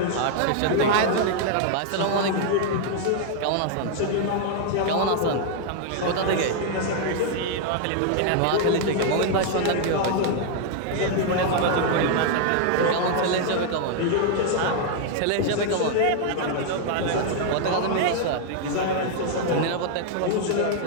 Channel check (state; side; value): different; both; correlation 0.00